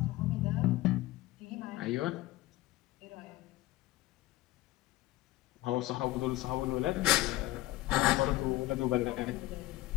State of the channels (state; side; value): quieter; right; 17.5 dB